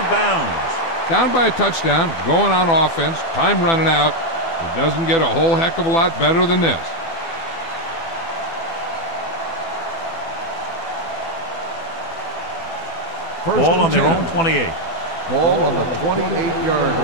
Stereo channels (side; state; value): right; late; 12 ms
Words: bounds. Down by a touchdown, going on offense, time running out. It doesn't get a whole heck of a lot better than this. Ball on their own 28. Ball on the 28-yard